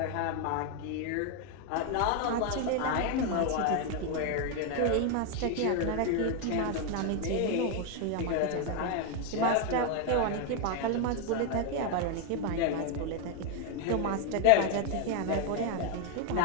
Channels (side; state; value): both; different; correlation 0.00